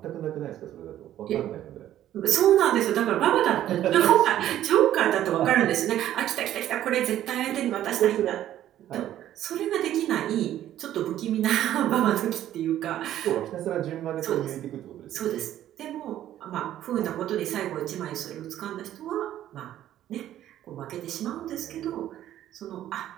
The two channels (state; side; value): quieter; left; 12.2 dB